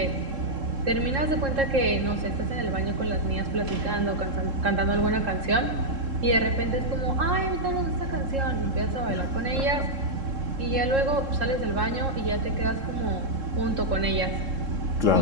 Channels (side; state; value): left; late; 3.7 ms